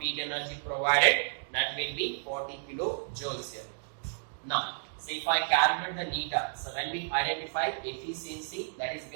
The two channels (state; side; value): silent; left; digital silence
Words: heat energy provided, that will be 40 kilojoules here. Now, so if I calculate the neta, so when we identify efficiency, that is